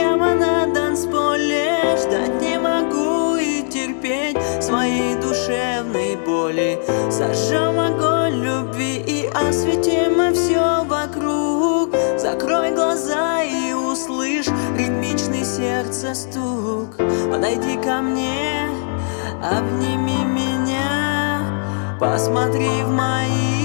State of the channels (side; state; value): right; silent; digital silence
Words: на танцполе. Ждать не могу и терпеть своей душевной боли. Зажжем огонь любви и осветим все вокруг. Закрой глаза и услышь ритмичный сердца стук. Подойди ко мне, обними меня, посмотри в